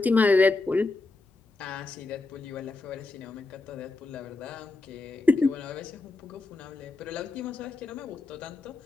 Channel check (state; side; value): quieter; right; 3.4 dB